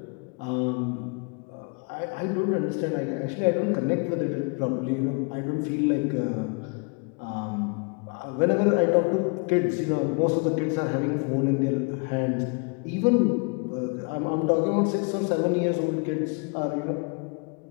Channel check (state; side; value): quieter; right; 33.5 dB